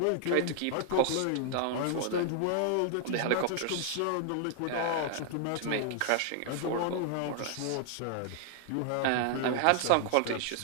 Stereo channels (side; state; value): both; different; correlation 0.00